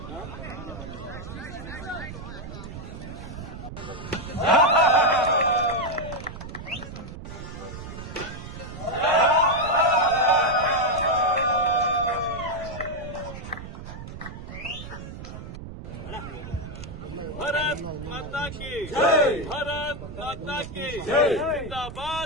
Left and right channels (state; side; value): noise; right; rumble, 11 dB below the sound